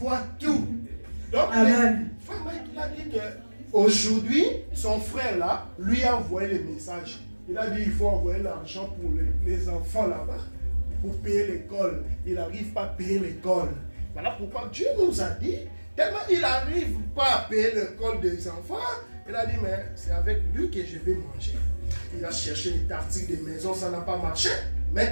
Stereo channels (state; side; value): inverted; both; correlation -1.00